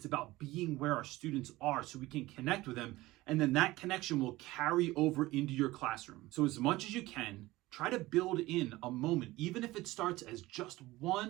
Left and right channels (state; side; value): quieter; left; 18.7 dB